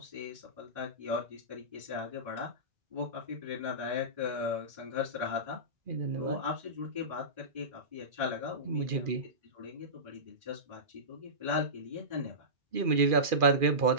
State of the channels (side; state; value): left; late; 2.4 ms